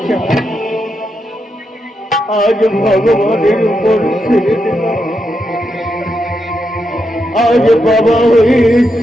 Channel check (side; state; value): both; normal; correlation 0.83